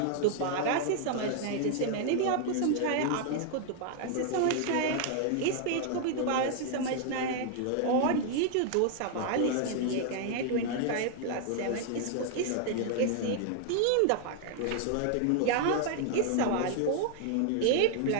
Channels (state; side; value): different; both; correlation 0.00